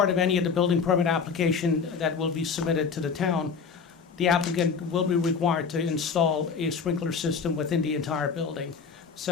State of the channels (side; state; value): right; quieter; 5.7 dB